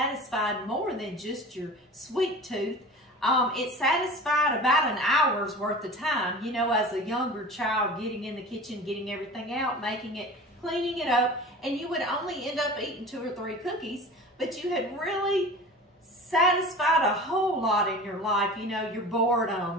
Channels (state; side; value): normal; both; correlation 0.37